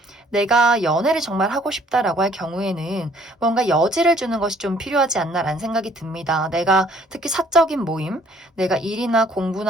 내가 연애를 정말 하고 싶다라고 할 경우에는 뭔가 여지를 주는 것이 좀 필요하지 않나라는 생각이 듭니다. 내가 특히 사적인 모임, 내가 일이나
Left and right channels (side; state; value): both; normal; correlation 0.60